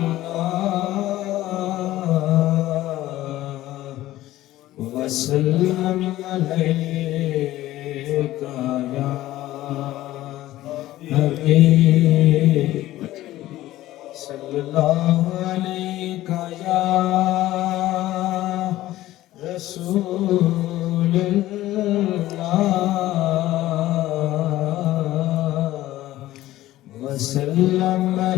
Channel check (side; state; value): right; quieter; 15.4 dB